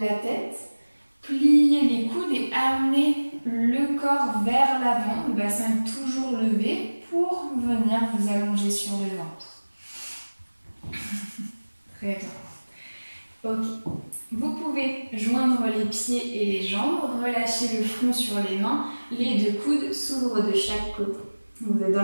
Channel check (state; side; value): inverted; both; correlation -1.00